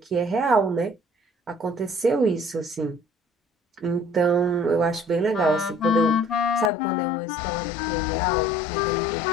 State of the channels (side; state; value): right; drops out; at 6.7 s